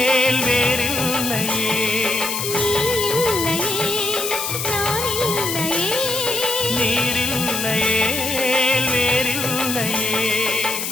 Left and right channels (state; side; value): noise; left; hiss, 3 dB below the sound